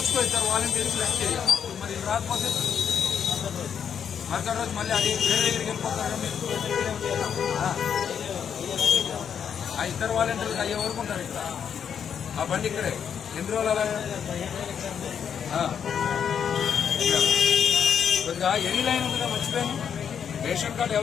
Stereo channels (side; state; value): right; quieter; 7.8 dB